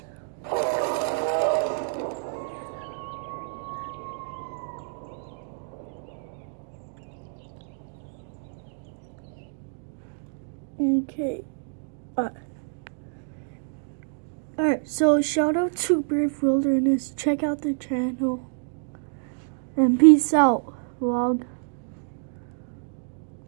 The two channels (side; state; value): left; silent; digital silence